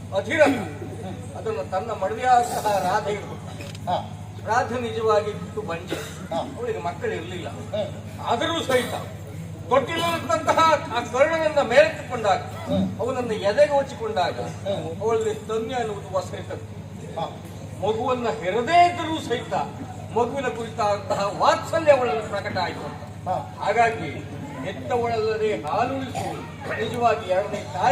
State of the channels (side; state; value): both; identical; correlation 1.00